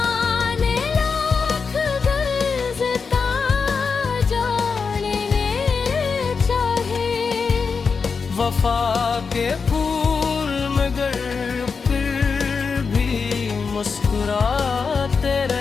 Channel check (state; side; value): quieter; right; 5.3 dB